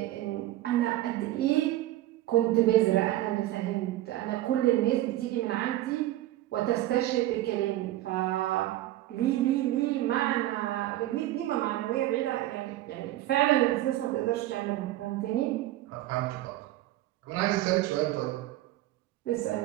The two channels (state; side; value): quieter; left; 15.2 dB